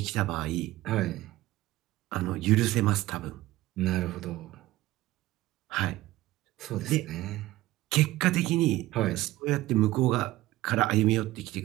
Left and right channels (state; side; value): quieter; left; 16.8 dB